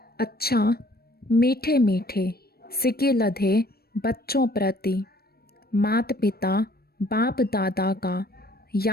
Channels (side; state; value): right; late; 0.45 ms